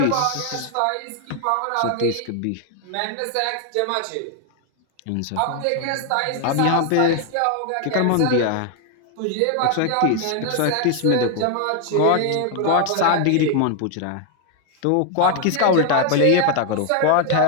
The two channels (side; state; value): both; different; correlation 0.00